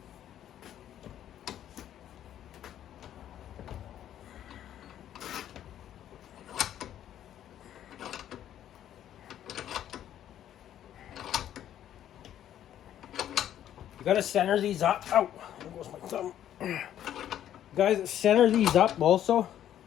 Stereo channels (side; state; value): right; quieter; 11.1 dB